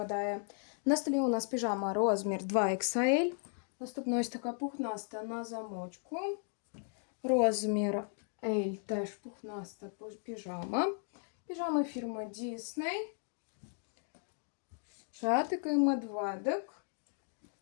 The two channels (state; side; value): silent; right; 54 dB below the other